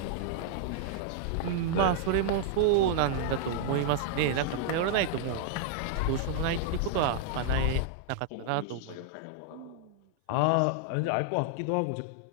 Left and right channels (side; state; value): both; different; correlation -0.01